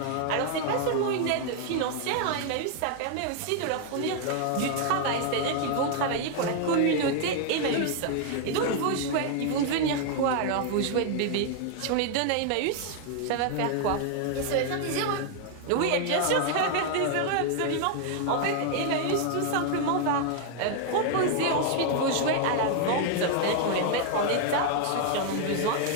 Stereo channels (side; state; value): both; different; correlation 0.00